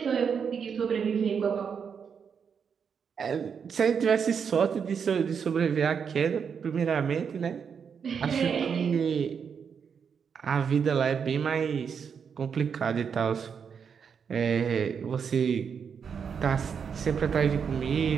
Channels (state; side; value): quieter; left; 6.7 dB